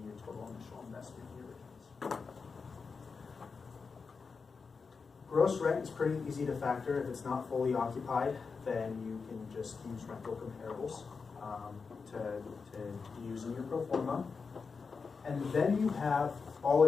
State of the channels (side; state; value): right; quieter; 5.0 dB